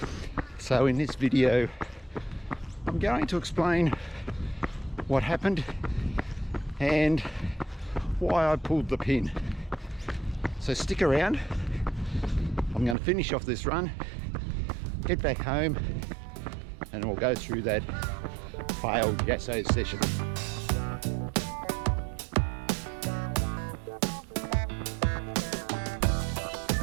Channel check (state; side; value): drops out; left; at 13.0 s